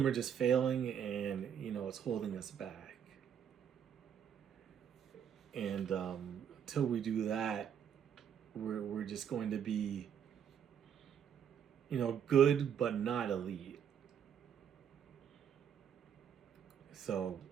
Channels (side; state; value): left; quieter; 8.5 dB